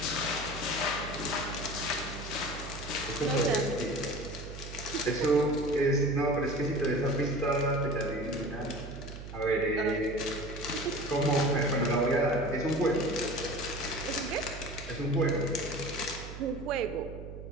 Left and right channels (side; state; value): right; noise; hum, 11 dB below the sound